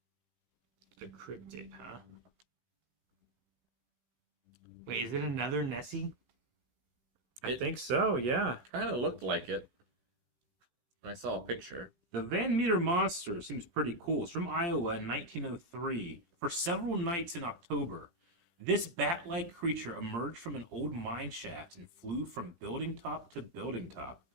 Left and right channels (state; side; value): late; left; 17 ms